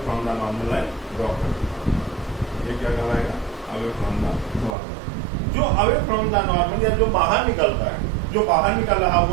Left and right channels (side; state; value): left; drops out; at 4.8 s